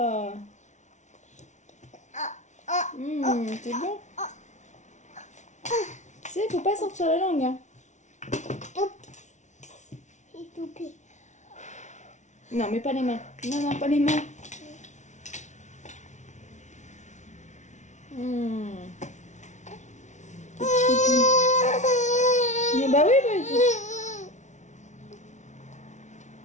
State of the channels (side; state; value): right; late; 0.35 ms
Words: C'est bon. Tu sais, faut pas sortir la langue, hein. C'est tout pire. Non, mais pas les mains. Non, pas les mains. Mais bah oui,